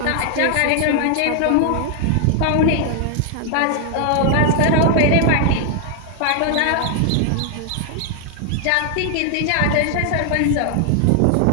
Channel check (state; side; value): different; both; correlation 0.00